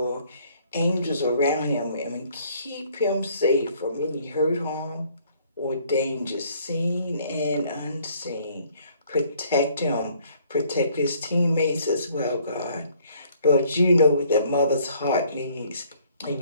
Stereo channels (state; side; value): inverted; both; correlation -0.62